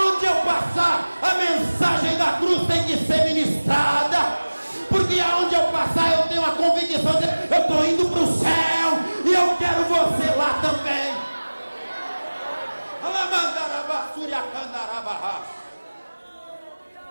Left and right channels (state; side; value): inverted; both; correlation -1.00